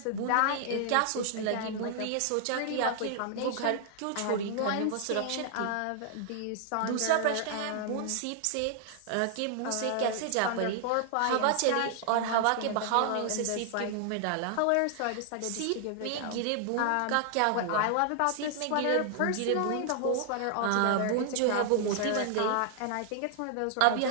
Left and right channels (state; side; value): different; both; correlation 0.00